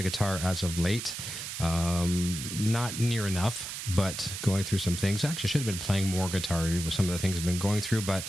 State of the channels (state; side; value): noise; right; hiss, 7 dB below the sound